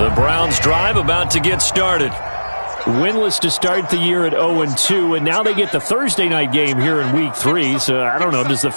Browns drive about to get started. Winless to start the year at 0-2, and now they get the Thursday night game here in Week 3. So, I don't know, does the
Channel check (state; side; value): inverted; both; correlation -1.00